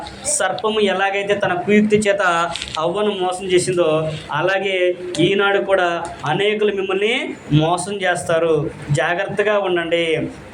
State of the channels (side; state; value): both; identical; correlation 1.00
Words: సర్పము ఎలాగైతే తన కుయుక్తి చేత హవ్వను మోసం చేసిందో అలాగే ఈనాడు కూడా అనేకులు మిమ్మల్ని మోసం చేస్తారు. జాగ్రత్తగా ఉండండి.